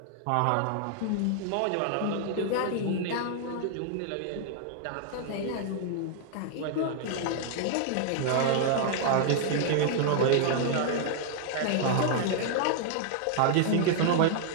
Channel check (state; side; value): different; both; correlation 0.00